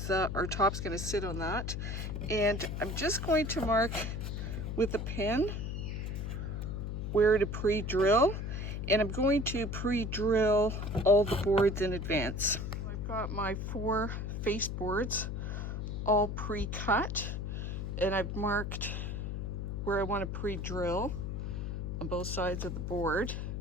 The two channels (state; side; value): noise; left; hum, 3 dB below the sound